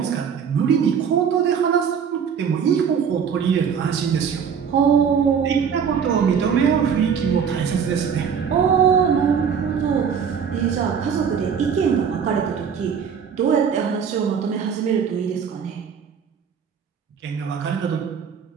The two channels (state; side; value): quieter; left; 7.1 dB